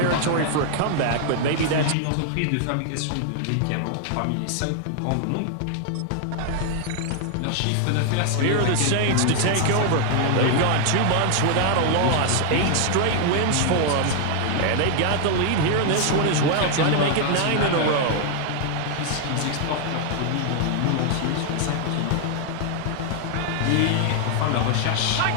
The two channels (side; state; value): both; different; correlation 0.00